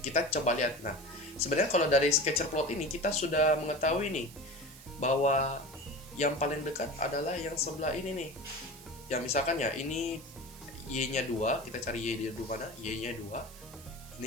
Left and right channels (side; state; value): right; noise; hiss, 18 dB below the sound